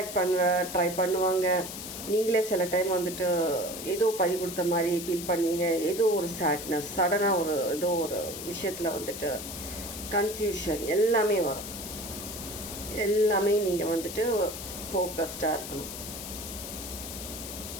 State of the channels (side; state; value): left; noise; hiss, 9 dB below the sound